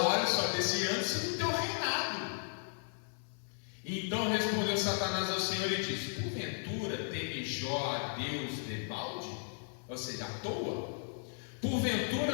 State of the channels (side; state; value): right; silent; 54 dB below the other